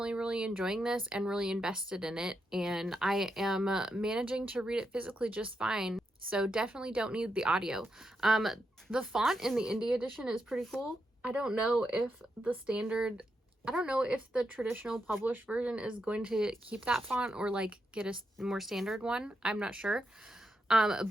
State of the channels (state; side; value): normal; both; correlation 0.84